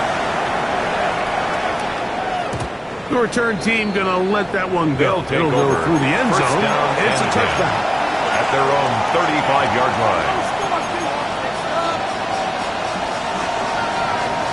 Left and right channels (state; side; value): identical; both; correlation 1.00